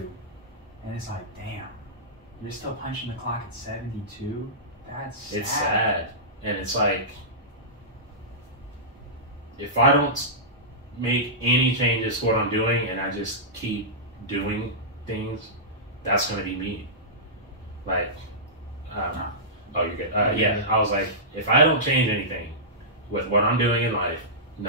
And it's like, damn, you're still punching the clock at 72? That's sad. It's sad. And it's like, if I don't make any changes to what I'm doing and I just keep doing things, that's going to be me. Like, oh, you're good. Yeah, I was like, if I don't change anything with what I'm doing in life,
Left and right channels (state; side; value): normal; both; correlation -0.16